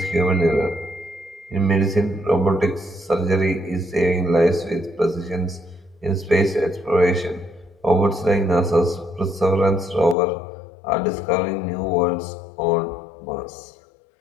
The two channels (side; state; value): right; drops out; at 10.2 s